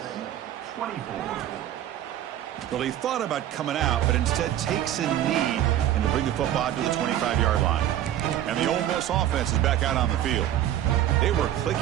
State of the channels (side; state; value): left; quieter; 12.0 dB